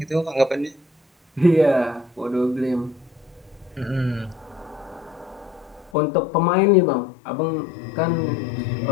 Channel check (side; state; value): right; drops out; at 5.9 s